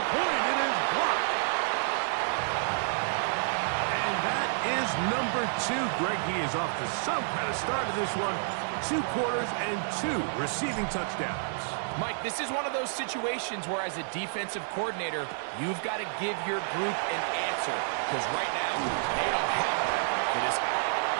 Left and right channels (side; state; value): left; silent; digital silence